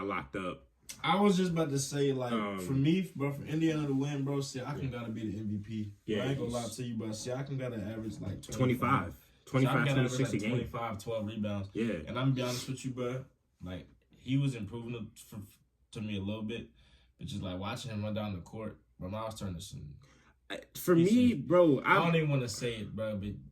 locked up. I was just about to say, for me, bro, for Indiana to win, bro, Siakam got to be the MVP. Yeah, I ain't going to lie to you, but Siakam got to average 25, 26 a game. 25, 12 rebounds. Yeah. And I'm going to be honest with you, bro, he was improving to me a little bit, but just, watching him run down the court, bro, I was turning to some... For me, bro, I don't even want to say it, bro, but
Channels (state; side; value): identical; both; correlation 1.00